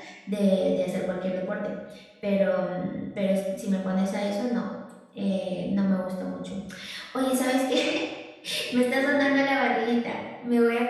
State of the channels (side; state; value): both; identical; correlation 1.00